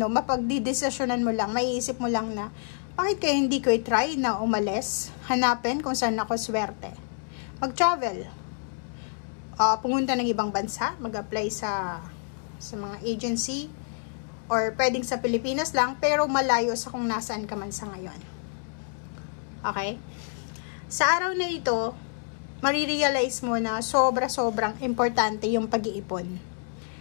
mo lang, maiisip mo lang na, bakit kaya hindi ko i-try na umalis, hanapin kung saan ako swerte. Mag-travel, pumunta ng ibang bansa, mag-apply sa mga agency, or pwedeng sa Pilipinas lang, pero malayo sa kung nasaan ka man sa ngayon. Okay? Sa araw na ito, marirealize mo na sobrang importante yung pag-iipon.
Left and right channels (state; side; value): silent; right; 60 dB below the other